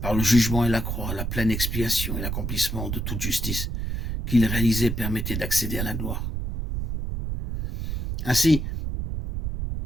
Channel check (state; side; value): noise; right; rumble, 3 dB below the sound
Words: Par le jugement et la croix, la pleine expiation et l'accomplissement de toute justice qu'il réalisait permettait d'accéder à la gloire. Ainsi,